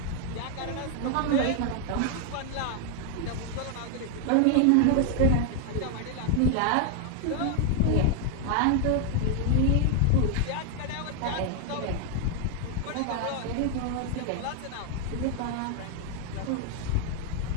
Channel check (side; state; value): both; different; correlation 0.00